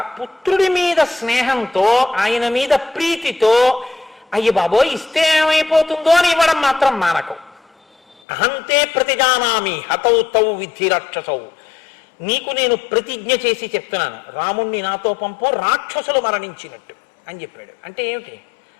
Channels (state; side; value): drops out; right; at 8.2 s